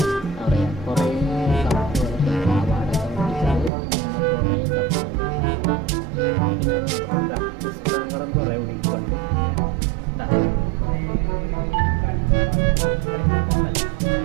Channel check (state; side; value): drops out; left; at 3.7 s